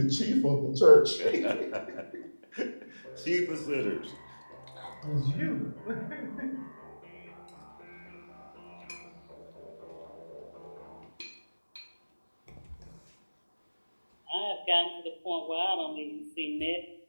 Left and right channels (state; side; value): inverted; both; correlation -1.00